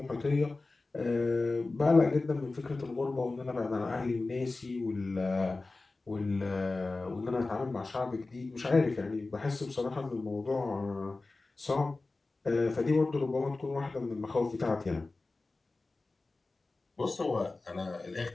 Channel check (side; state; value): right; quieter; 3.4 dB